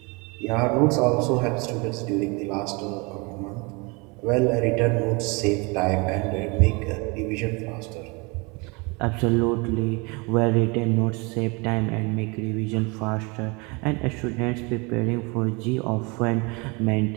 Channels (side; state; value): left; quieter; 28.9 dB